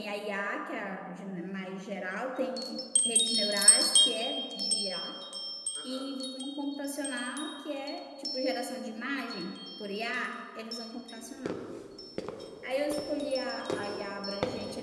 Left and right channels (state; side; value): identical; both; correlation 1.00